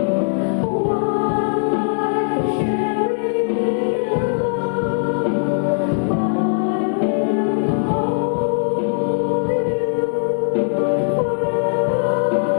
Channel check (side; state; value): right; silent; 61 dB below the other